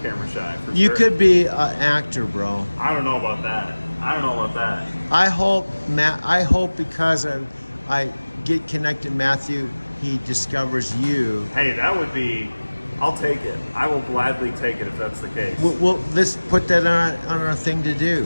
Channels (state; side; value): inverted; both; correlation -1.00